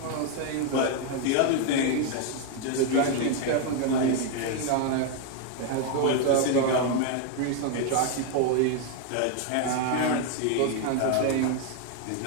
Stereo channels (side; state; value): both; different; correlation 0.01